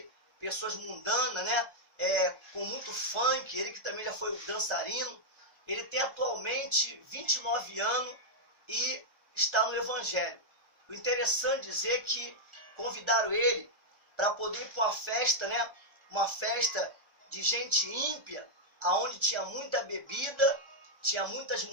pessoas mundanas, né? Com muito funk. Ele que também já foi dançarino. Ele tem atualmente 29 anos e está no Evangelho. O interessante dizer que convidaram ele para poder ir para uma festa, né? Uma festa de gente ímpia, aonde tinha muita bebida, tinha muitas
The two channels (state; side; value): late; left; 1.4 ms